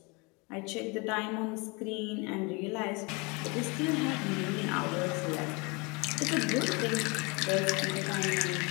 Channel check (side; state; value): right; quieter; 28.7 dB